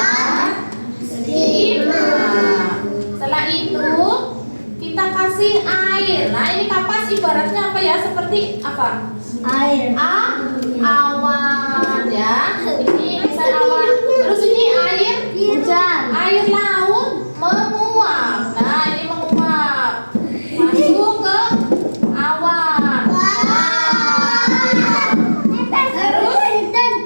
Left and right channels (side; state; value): both; inverted; correlation -1.00